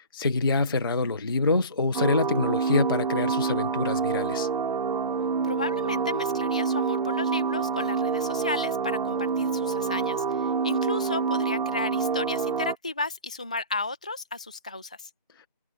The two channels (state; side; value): inverted; both; correlation -0.31